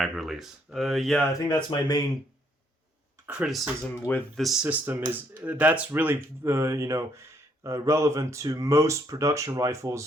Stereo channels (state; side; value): normal; both; correlation 0.69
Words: release? Yeah, I think that's my main criticism with this system. Is that's really relevant to most production